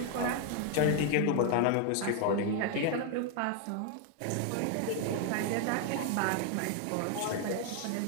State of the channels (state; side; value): different; both; correlation 0.00